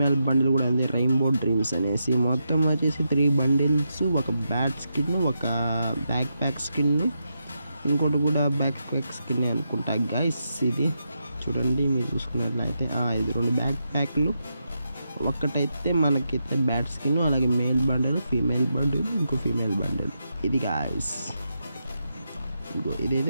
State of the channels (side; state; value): both; inverted; correlation -0.84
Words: బండిల్ కూడా ఉంది, రెయిన్బో డ్రీమ్స్ అనేసి. మొత్తం వచ్చేసి 3 బండిల్స్, ఒక బ్యాట్ స్కిన్, ఒక బ్యాక్ ప్యాక్ స్కిన్, ఇంకోటి కూడా బ్యాక్ ప్యాక్ స్కిన్ అనుకుంటా గైస్. ఇది చూడండి మీరు చూసుకున్నట్లయితే ఇది 2 బ్యాక్ ప్యాక్లు, ఒక్కటైతే మనకైతే బ్యాట్ స్కిన్, అలాగే మేల్ బండిల్, ఫీమేల్ బండిల్, ఇంకో ఫీమేల్ బండిల్. ఇది గాయస్ ఇంకో